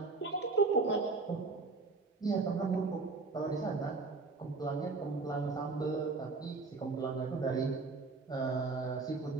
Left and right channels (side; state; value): left; quieter; 4.0 dB